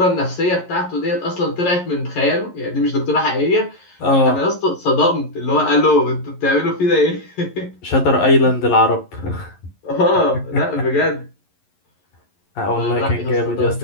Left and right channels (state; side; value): late; right; 11 ms